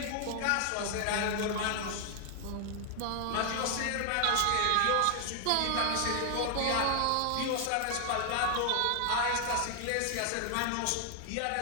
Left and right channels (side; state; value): both; different; correlation 0.00